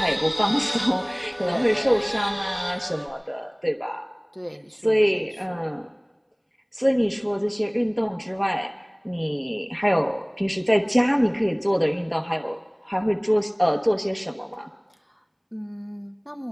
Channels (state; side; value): identical; both; correlation 1.00